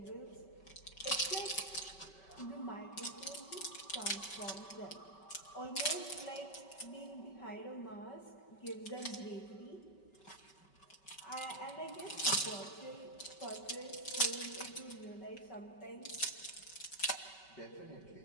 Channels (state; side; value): late; right; 5.2 ms